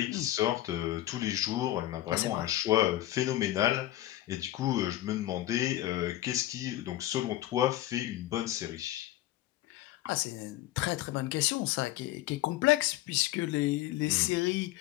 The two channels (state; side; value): quieter; right; 14.9 dB